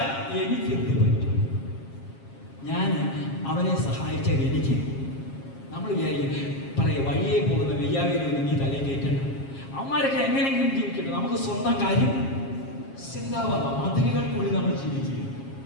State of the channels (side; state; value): right; late; 7.4 ms